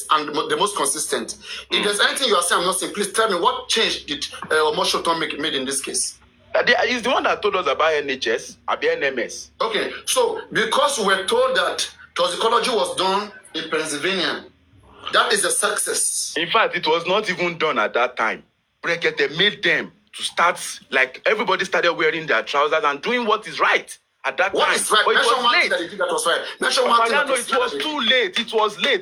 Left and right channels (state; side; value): identical; both; correlation 1.00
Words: and the most consistent. If there's anything you are saying I'm not saying, please tell me what change did Omoshoton made in this case? He's the one that told us about NHS, about NMS. Okay, so because we were told that toxicology was done in Pennsylvania, that is a success. In fact, it was not even done at that time. Berekete made them to start, like everybody started wearing their trousers and doing what is right. At that what time, is right? But it was late. That that was right. Mention one thing. It was too late. It was